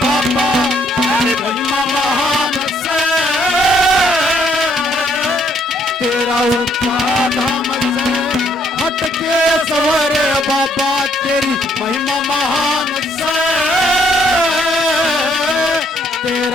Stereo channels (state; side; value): normal; both; correlation 0.68